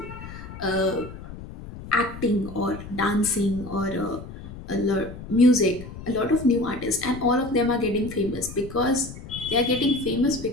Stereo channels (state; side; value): noise; left; rumble, 13 dB below the sound